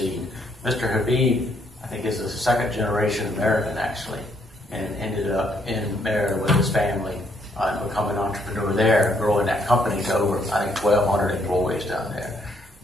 Mr. Habib, I think, is a second generation American, actually, and ended up in Merida with his family and becoming an entrepreneur there, growing that company to over, I think, 1,200 employees down there.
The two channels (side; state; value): both; normal; correlation 0.70